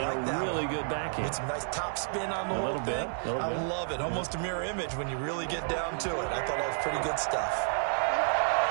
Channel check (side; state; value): left; silent; digital silence